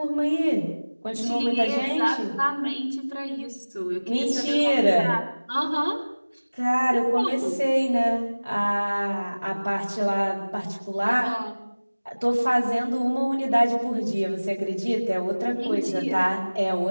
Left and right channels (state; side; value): inverted; both; correlation -1.00